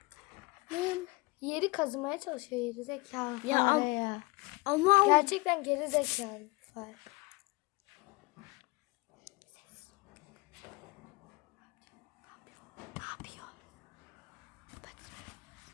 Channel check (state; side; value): quieter; right; 24.9 dB